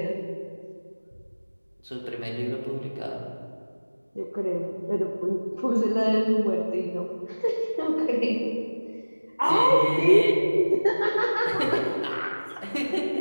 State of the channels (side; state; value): both; inverted; correlation -1.00